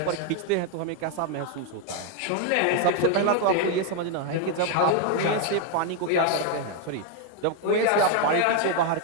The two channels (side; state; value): both; different; correlation 0.01